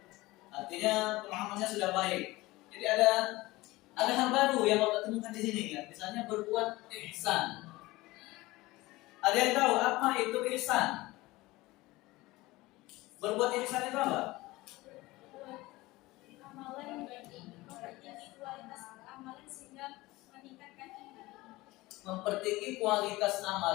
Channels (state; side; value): quieter; right; 19.9 dB